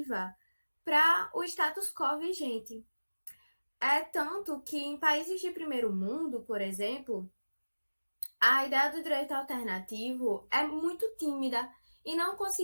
para o status quo vigente. É tanto que em países de primeiro mundo, por exemplo, a ideia do direito alternativo é muito tímida e não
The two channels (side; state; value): both; inverted; correlation -1.00